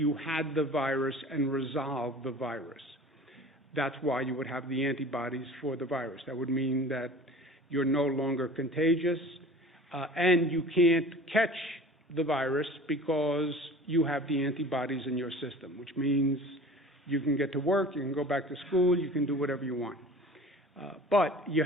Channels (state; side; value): normal; both; correlation 0.42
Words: had the virus and resolved the virus. That's why you would have the antibodies for the virus. That would mean that you're no longer contagious, and you can't catch the virus because you have the antibodies in your system, which means you can get to work, you can go back to school, you can do whatever you want. But you